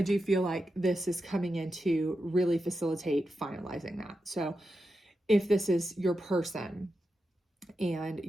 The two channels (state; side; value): normal; both; correlation 0.88